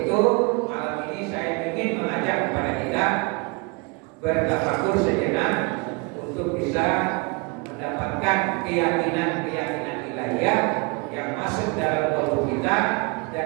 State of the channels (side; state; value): left; quieter; 30.0 dB